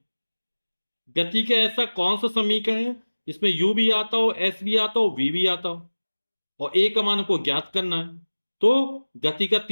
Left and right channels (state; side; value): inverted; both; correlation -1.00